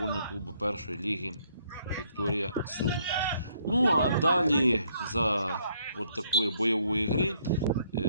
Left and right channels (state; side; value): inverted; both; correlation -0.70